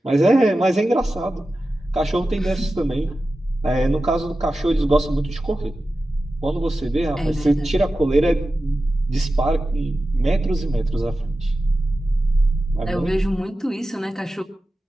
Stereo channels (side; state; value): both; normal; correlation 0.94